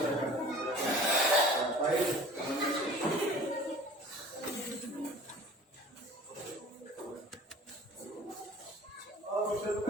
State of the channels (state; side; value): normal; both; correlation 0.44